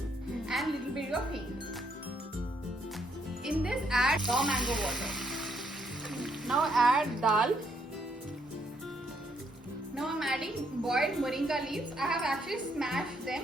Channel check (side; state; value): both; normal; correlation 0.73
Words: and little bit of hing. In this add raw mango water. Now add dal. Now I'm adding boiled moringa leaves. I have actually smashed them.